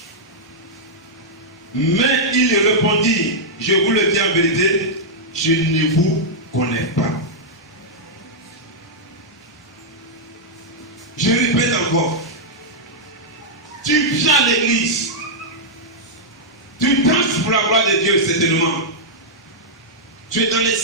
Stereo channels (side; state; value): both; normal; correlation -0.07